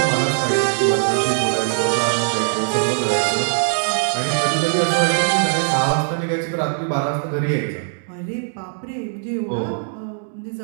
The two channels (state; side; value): silent; left; digital silence